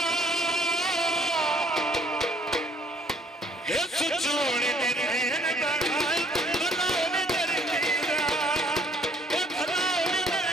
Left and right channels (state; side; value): normal; both; correlation 0.61